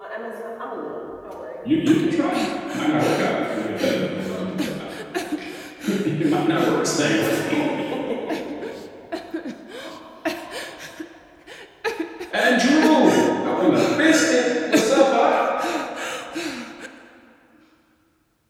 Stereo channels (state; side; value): identical; both; correlation 1.00